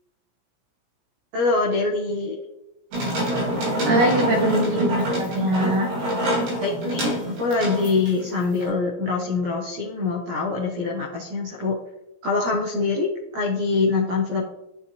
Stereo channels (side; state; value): left; late; 17 ms